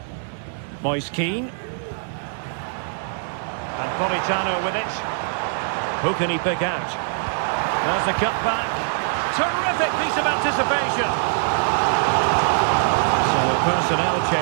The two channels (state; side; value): silent; left; digital silence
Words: Moise Keane. And Politano with it. Who can he pick out? There's the cut back. Terrific piece of anticipation. So a personnel